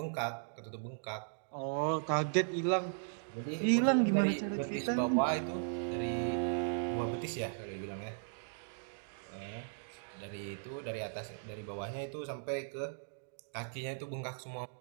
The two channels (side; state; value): left; silent; digital silence